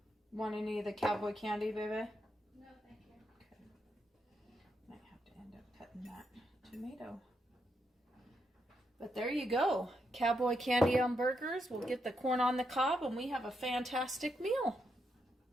Want any of the cowboy candy, baby? No, thank you. Okay. Might have to end up cutting that tomato. But there you go. Cowboy candy on burgers. We'll get the corn on the cob, and we have a fantastic meal.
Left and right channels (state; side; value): normal; both; correlation 0.81